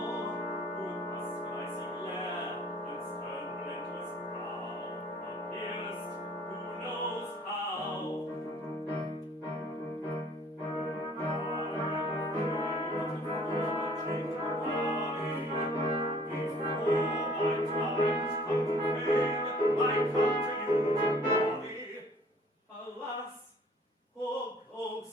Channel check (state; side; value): normal; both; correlation 0.55